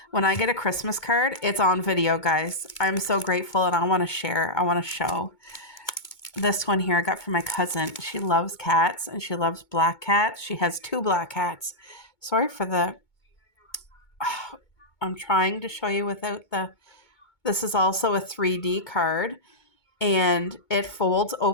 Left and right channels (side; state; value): right; late; 2.2 ms